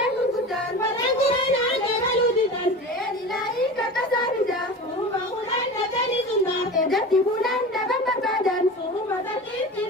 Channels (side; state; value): both; normal; correlation 0.32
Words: kukutan Walangurana jagaluditan Elilahi kakasarida Suruba kulan datani sunda Edati bulan daban berbadan Suruba takiti